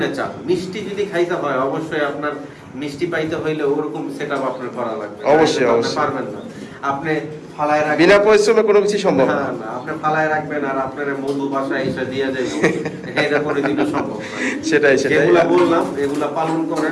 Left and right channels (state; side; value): identical; both; correlation 1.00